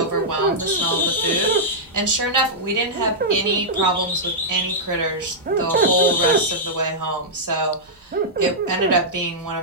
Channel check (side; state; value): both; normal; correlation -0.09